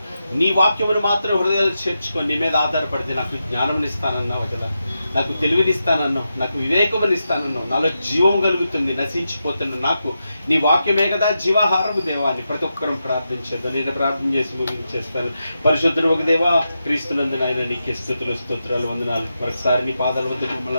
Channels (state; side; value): inverted; both; correlation -0.88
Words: నీ వాక్యమును మాత్రం హృదయాలు చేర్చుకొని నీ మీద ఆధారపడితే నాకు జ్ఞానం ఇస్తానన్నావు కదా, నాకు తెలివినిస్తానన్నావు, నాకు వివేకమునిస్తానన్నావు, నాలో జీవం కలుగుతుంది, నశించిపోతున్న నాకు నీ వాక్యమే కదా జీవాహారము దేవా అని ప్రతి ఒక్కరం ప్రార్థించేద్దాం. నేను ప్రార్థన చేసి ముగించేస్తాను. పరిశుద్ధుడు ఒక దేవా, క్రీస్తునందు నాయన నీకే స్తుతులు స్తోత్రాలు వందనాలు. మరొకసారి నీ పాదాల వద్ద